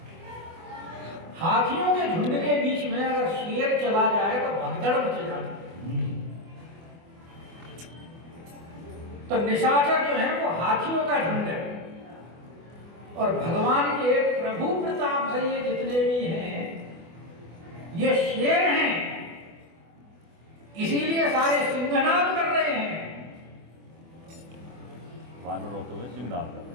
हाथियों के झुंड के बीच में अगर शेर चला जाए तो भगदड़ मच जाती। तो निशाचर जो है वो हाथियों का झुंड है, और भगवान के प्रभु प्रताप से ये जितने भी हैं ये शेर हैं, इसीलिए सारे सिंहनाद कर रहे हैं वानर होते हुए सिंहनाद कर रहे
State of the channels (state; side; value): late; left; 24 ms